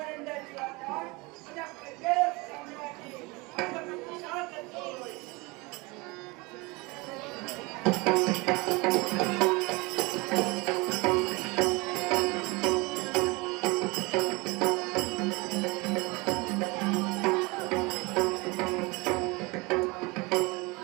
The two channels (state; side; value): quieter; left; 25.3 dB